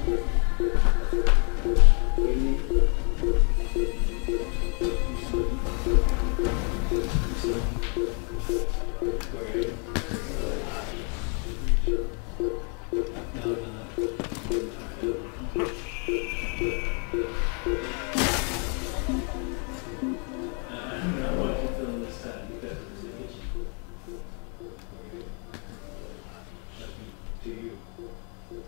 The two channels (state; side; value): quieter; right; 38.0 dB